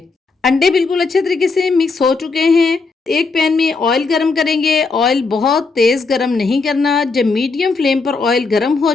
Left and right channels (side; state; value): right; quieter; 4.2 dB